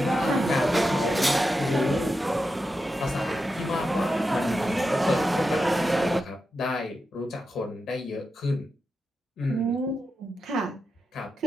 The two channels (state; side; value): normal; both; correlation 0.88